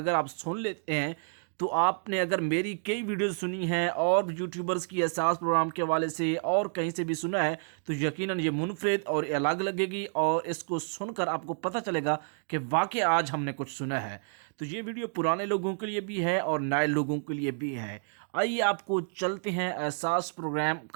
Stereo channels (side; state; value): left; silent; digital silence